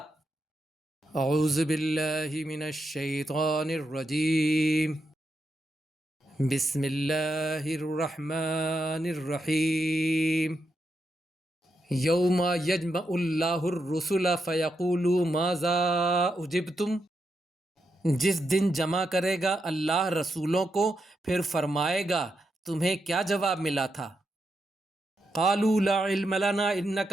اعوذ باللہ من الشیطان الرجیم، بسم اللہ الرحمن الرحیم۔ یوم یجمع اللہ الرسل فیقول ماذا اجبتم، جس دن جمع کرے گا اللہ رسولوں کو پھر فرمائے گا تمہیں کیا جواب ملا تھا۔ قالوا لا علم لنا انک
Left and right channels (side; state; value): both; normal; correlation 0.84